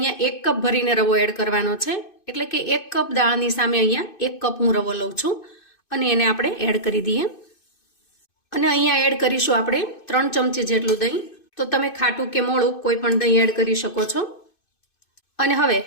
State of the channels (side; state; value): right; late; 2.5 ms